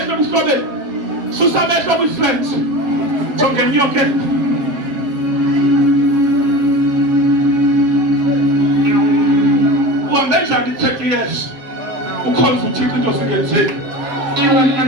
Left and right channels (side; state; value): left; late; 7.2 ms